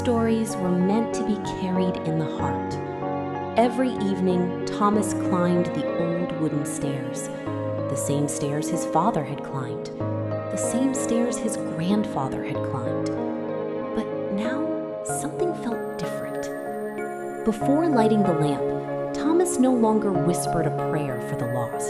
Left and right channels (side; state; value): both; identical; correlation 1.00